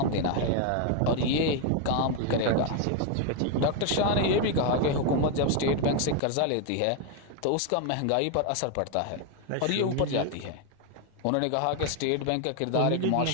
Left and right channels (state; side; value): different; both; correlation 0.01